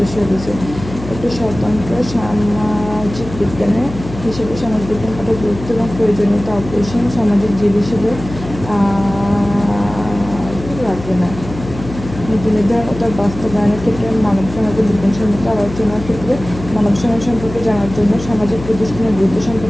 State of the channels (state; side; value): noise; left; hum, 11 dB below the sound